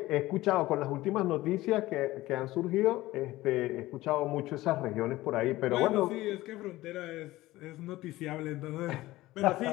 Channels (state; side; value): quieter; right; 17.5 dB